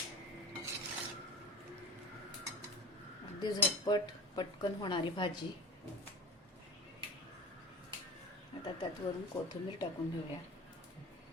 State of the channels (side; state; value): both; normal; correlation 0.34